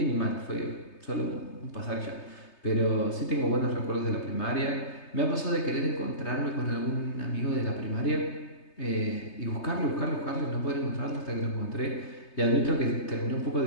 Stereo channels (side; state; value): right; late; 3.3 ms